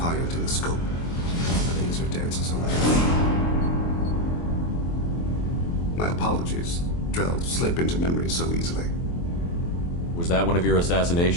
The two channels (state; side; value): late; right; 23 ms